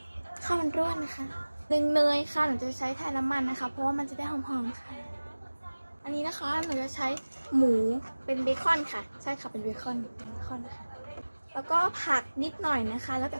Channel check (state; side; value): inverted; both; correlation -1.00